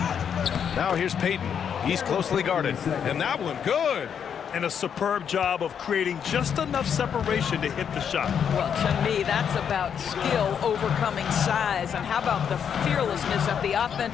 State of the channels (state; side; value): quieter; right; 7.8 dB